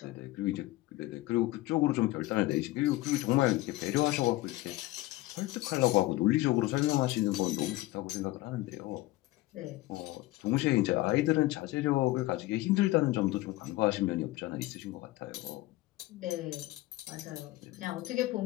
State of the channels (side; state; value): right; quieter; 18.1 dB